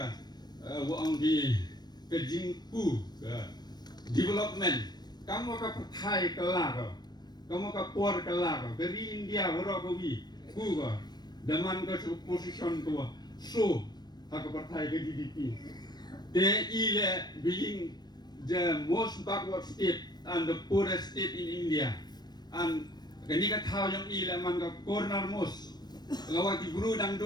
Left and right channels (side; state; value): right; late; 0.20 ms